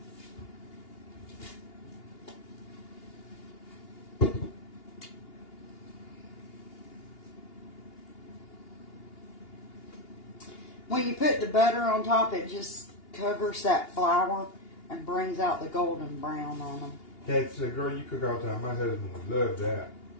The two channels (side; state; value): right; late; 2.8 ms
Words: When you put the butter on top, it just covers that flour and brings out the golden brown on them. That's a girl you cook all the time. My husband would love that.